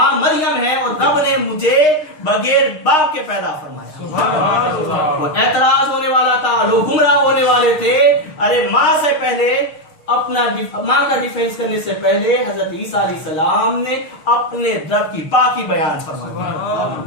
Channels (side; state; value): right; late; 6.5 ms